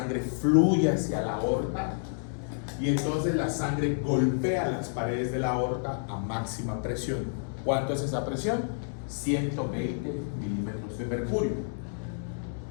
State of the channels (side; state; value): right; silent; digital silence